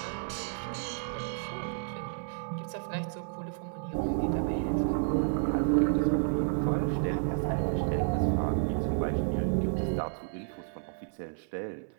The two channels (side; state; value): left; silent; 57 dB below the other